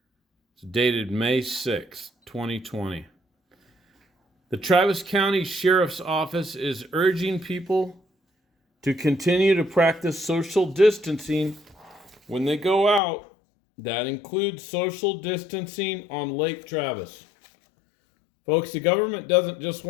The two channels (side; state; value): right; drops out; at 13.0 s